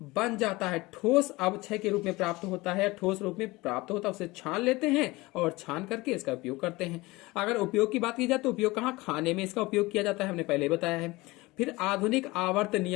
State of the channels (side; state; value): right; quieter; 21.5 dB